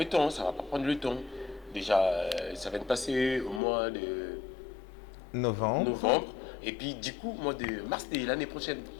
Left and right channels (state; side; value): drops out; right; at 3.6 s